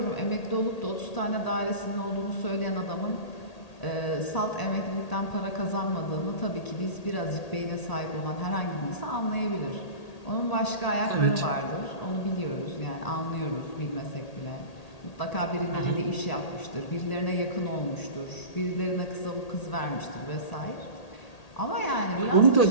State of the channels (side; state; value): right; late; 1.8 ms